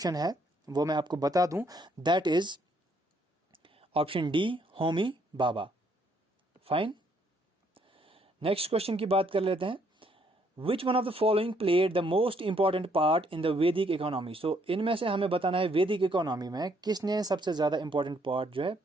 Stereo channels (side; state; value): both; normal; correlation 0.69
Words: है वो मैं आपको बता दूं, that is option D, Homi Baba. Fine. Next question की बात कर लेते हैं। Which one of the following played the most important part in the वैदिक इकोनॉमी? सो इनमें से हमें बताना है वैदिक इकोनॉमी में किसने सबसे ज्यादा इंपॉर्टेंट पार्ट जो है